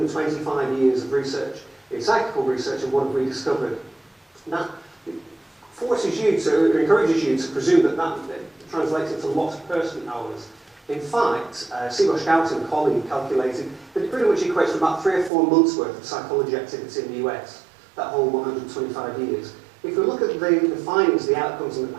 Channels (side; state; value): left; drops out; at 15.3 s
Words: years of research in psychical research and what have we discovered. That forces you to, encourages you to presume that that translates into lots of person hours. In fact, Seabosh Gout and a colleague calculated that it pretty much equates to about 3 or 4 months' worth of psychology activity in the US, that whole 125 years. If we look at the findings, the outcomes and the